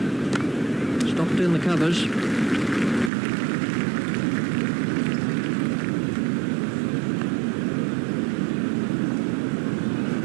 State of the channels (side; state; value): left; drops out; at 3.1 s